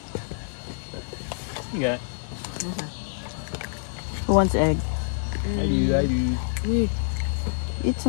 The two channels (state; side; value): silent; right; digital silence